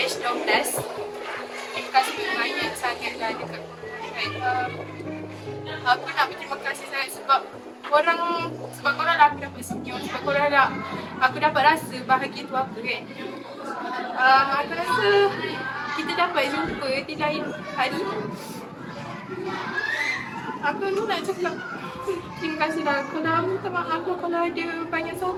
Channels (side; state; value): both; identical; correlation 1.00